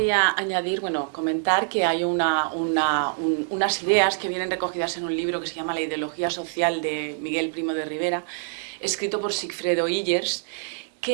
añadir, bueno, comentar que hay unas ideas que vienen recogidas en un libro que se llama La ideología social de Miguel Primo de Rivera, escrito por Sigfredo Illers,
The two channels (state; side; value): silent; left; digital silence